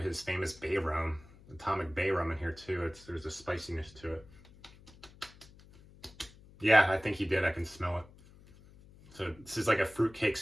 his famous bay rum, atomic bay rum in here too. There's a spiciness to it. Yeah, I think he did. I can smell it. So this is like a fruitcake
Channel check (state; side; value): noise; left; hum, 23 dB below the sound